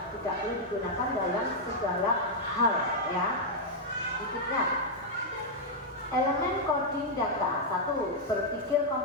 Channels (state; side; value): normal; both; correlation -0.04